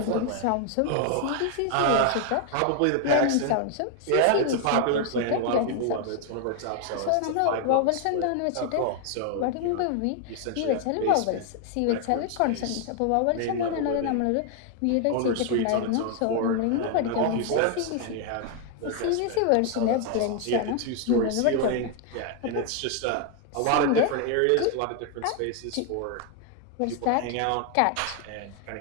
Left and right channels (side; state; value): both; different; correlation 0.00